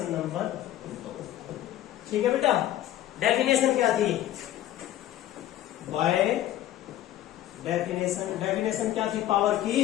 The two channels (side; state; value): right; quieter; 13.1 dB